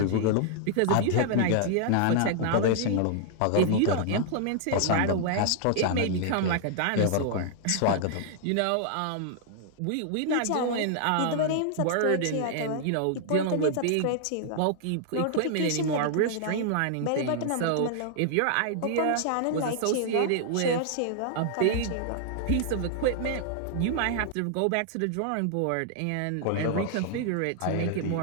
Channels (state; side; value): different; both; correlation -0.01